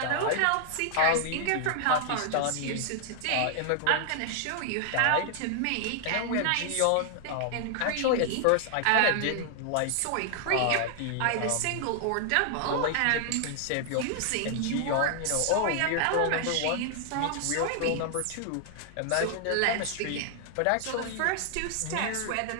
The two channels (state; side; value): different; both; correlation 0.00